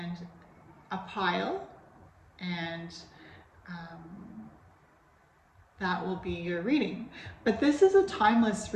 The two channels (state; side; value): identical; both; correlation 1.00